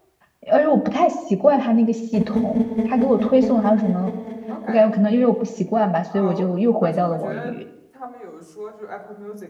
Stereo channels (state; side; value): identical; both; correlation 1.00